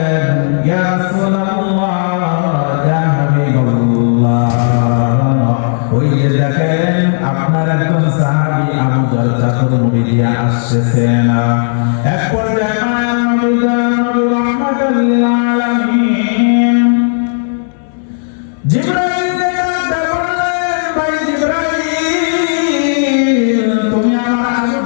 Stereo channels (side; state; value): right; silent; digital silence